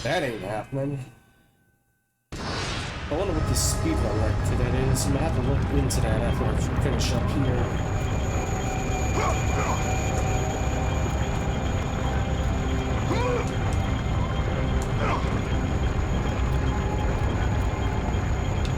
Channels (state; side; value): identical; both; correlation 1.00